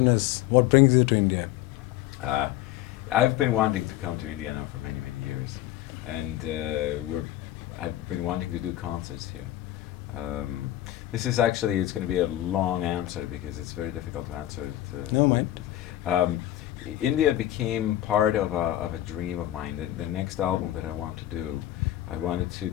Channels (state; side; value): quieter; right; 14.1 dB